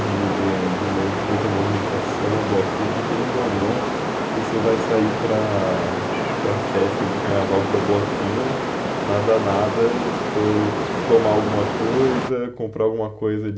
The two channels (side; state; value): both; identical; correlation 1.00